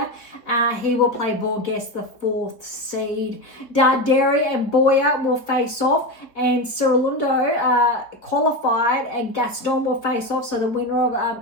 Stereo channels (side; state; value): right; late; 3.7 ms